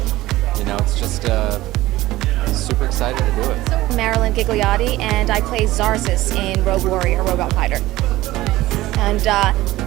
You know, it's just super excited to do it. Marilyn Gigliotti, and I play Zarzis in Rogue Warrior Robot Fighter. And a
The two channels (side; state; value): left; quieter; 17.0 dB